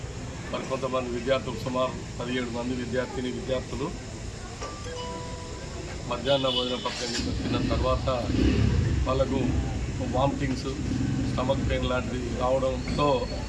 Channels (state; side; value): identical; both; correlation 1.00